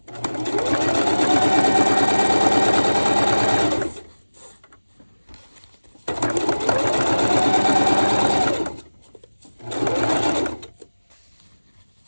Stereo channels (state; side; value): inverted; both; correlation -1.00